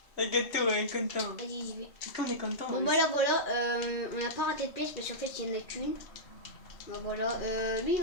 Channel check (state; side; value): late; right; 2.4 ms